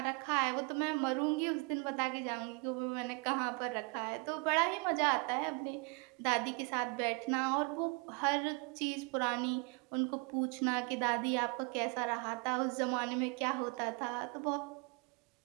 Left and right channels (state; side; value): quieter; left; 31.2 dB